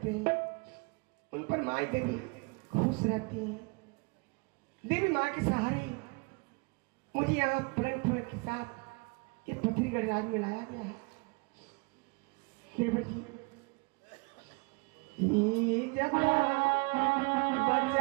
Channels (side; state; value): left; quieter; 30.2 dB